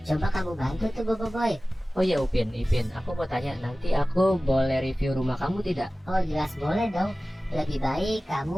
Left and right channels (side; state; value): both; normal; correlation 0.97